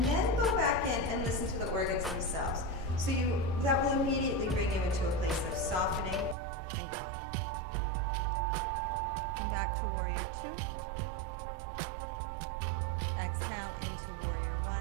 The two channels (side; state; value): left; drops out; at 6.4 s